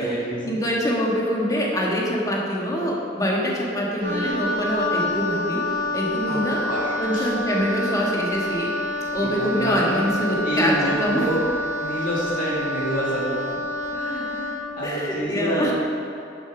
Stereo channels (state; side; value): normal; both; correlation 0.43